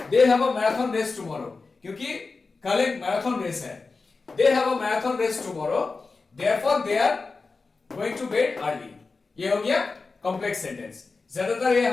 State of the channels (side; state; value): right; quieter; 4.1 dB